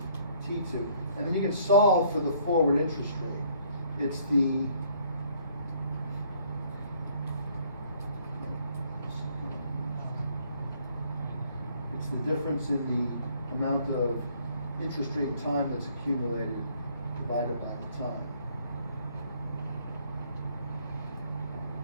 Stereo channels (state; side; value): inverted; both; correlation -0.63